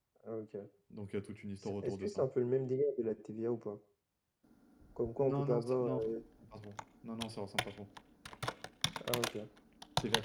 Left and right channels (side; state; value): both; identical; correlation 1.00